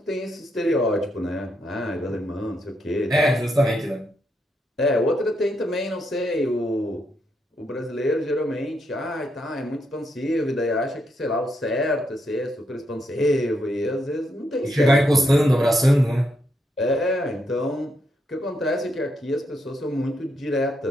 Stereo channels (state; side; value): normal; both; correlation 0.79